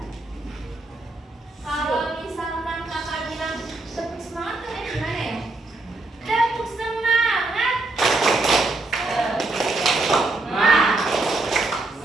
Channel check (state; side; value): quieter; left; 3.1 dB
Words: Kalau misalkan kakak bilang tepuk semangat tuh gimana ya? Tepuk semangat.